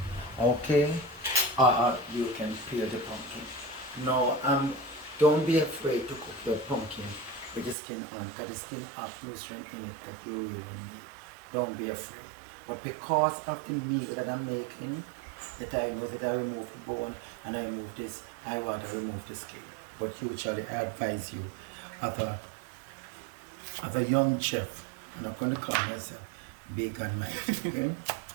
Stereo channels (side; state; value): left; drops out; at 7.8 s